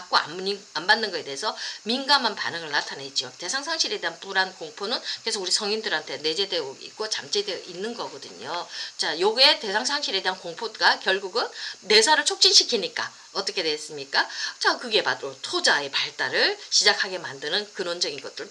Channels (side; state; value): both; identical; correlation 1.00